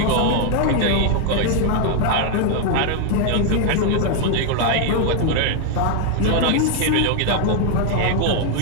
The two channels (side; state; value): both; different; correlation 0.00